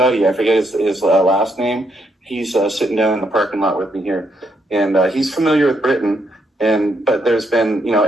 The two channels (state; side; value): normal; both; correlation 0.76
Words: I forget his last name. He's sitting down in the parking lot with me here, and he's familiar with Britain. But there's been, you know,